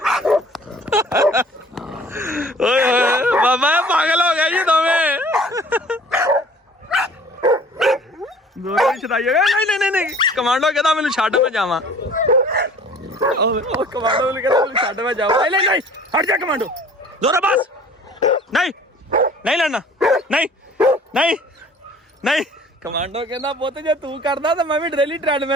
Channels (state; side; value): normal; both; correlation 0.50